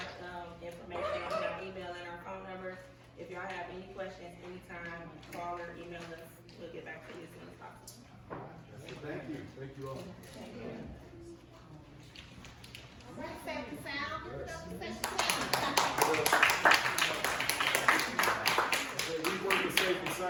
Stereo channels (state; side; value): identical; both; correlation 1.00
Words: information, our email, and our phone numbers. If y'all have any questions, anytime, call or email us. We'll get back to you as soon as possible. Thank you. Thank you all. All right, safe and sound. We've worked with Safe and